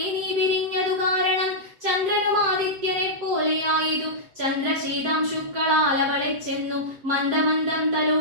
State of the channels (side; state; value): left; late; 7.7 ms